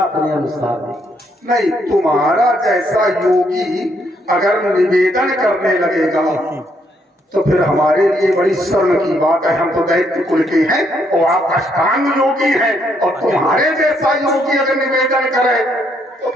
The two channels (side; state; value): both; normal; correlation 0.72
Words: अनुसार दें। नहीं, तुम्हारा जैसा योगी अगर निवेदन करने लगेगा तो फिर हमारे लिए बड़ी शर्म की बात है। हम तो दैत्य कुल के हैं और आप अष्टांग योगी हैं, और तुम्हारे जैसा योगी अगर निवेदन करे तो